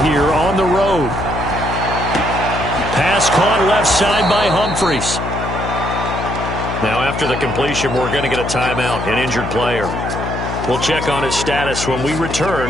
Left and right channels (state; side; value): noise; left; hum, 5 dB below the sound